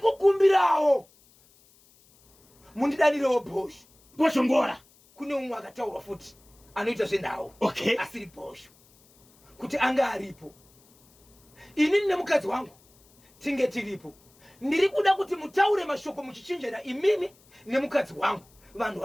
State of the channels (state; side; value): noise; left; hiss, 30 dB below the sound